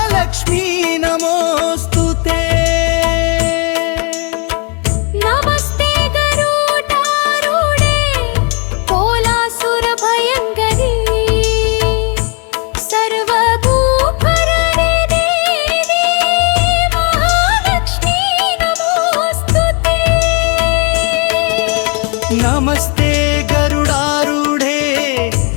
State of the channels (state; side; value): quieter; right; 34.7 dB